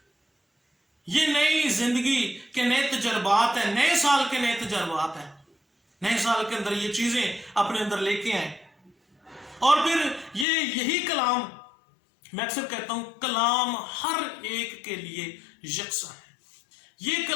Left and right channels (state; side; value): drops out; right; at 10.5 s